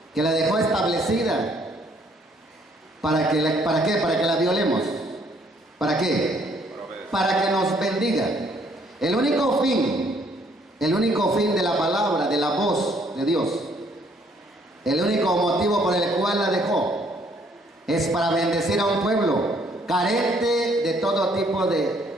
que la dejó establecida. ¿Para qué? Para que la violemos. ¿Para qué? Para que nos bendiga. El único fin de la palabra, de la voz de Dios, el único motivo por el cual la dejó, es para bendecir a un pueblo carente de todo tipo de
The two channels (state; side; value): normal; both; correlation 0.65